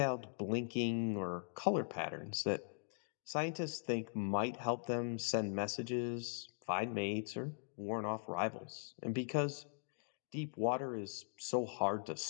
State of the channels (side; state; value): right; silent; digital silence